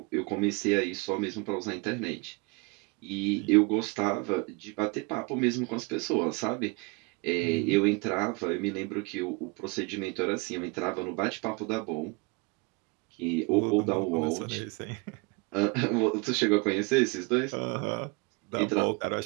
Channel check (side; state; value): left; quieter; 28.3 dB